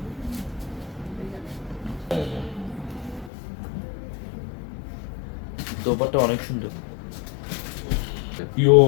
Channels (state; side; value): drops out; right; at 3.3 s